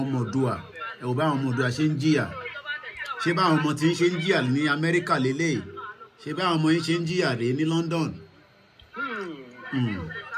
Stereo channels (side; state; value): both; identical; correlation 1.00